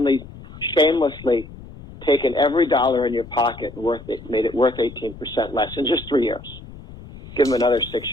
shamelessly taken every dollar in your pocket and made it worth 18% less in just 3 years. Give him another 6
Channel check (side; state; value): left; noise; rumble, 17 dB below the sound